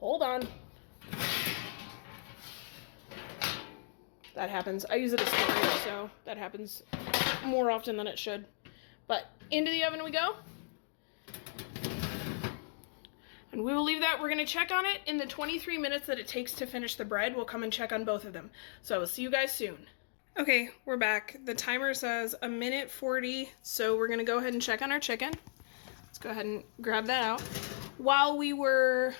on. That happens. I use it as storage, so that happens more often than it should. But into the oven we go. And we will leave that. We're going to check on it in the 23 minutes that it takes to finish the bread. We'll come and check on both of them. So I will see you guys soon. Okay, we're back. The timer says 1:40, so we're going to go ahead and check on our chicken. Let's go ahead and grab that out. While we were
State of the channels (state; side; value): silent; right; digital silence